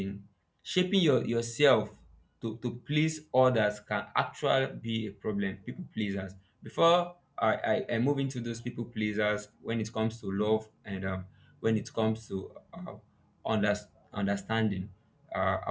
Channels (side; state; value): both; identical; correlation 1.00